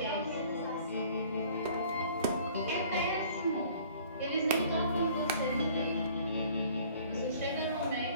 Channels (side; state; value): both; inverted; correlation -0.53